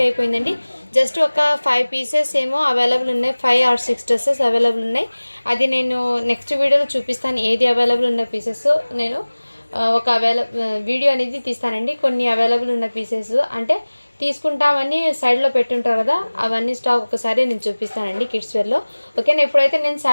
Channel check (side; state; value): both; inverted; correlation -1.00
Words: అయిపోయిందండి. జస్ట్ ఒక 5 పీసెస్ ఏమో అవైలబుల్ ఉన్నాయి, 5 or 6 డ్రెస్సెస్ అవైలబుల్ ఉన్నాయి. అది నేను నెక్స్ట్ వీడియోలో చూపిస్తాను. ఏది అవైలబుల్ ఉన్న పీసెస్ నేను ఒక వీడియో అనేది తీస్తానండి. కొన్ని అవైలబుల్ ఉన్న పీసెస్ అంటే తీసుకుంటామని సైడ్లో పెట్టుంటారు కదా, అవన్నీ స్టాక్ ఒకసారి నేను చూపిస్తానండి కిడ్స్ వేర్లో. ఓకేనా, ఇప్పుడైతే నేను